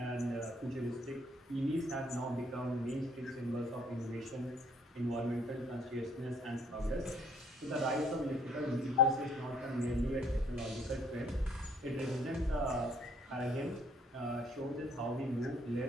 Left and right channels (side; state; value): both; normal; correlation 0.63